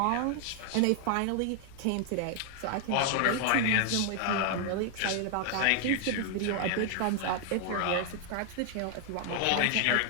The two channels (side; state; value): both; different; correlation 0.00